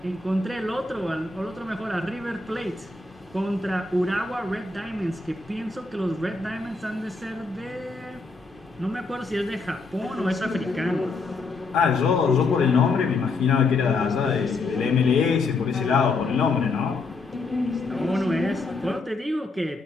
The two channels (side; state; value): right; quieter; 3.7 dB